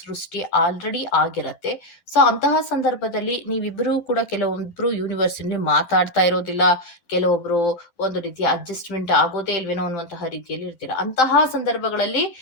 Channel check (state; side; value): late; right; 12 ms